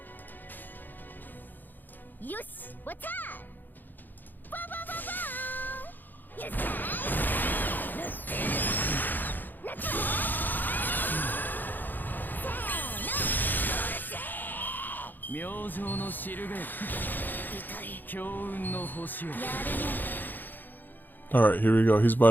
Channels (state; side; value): late; right; 0.088 ms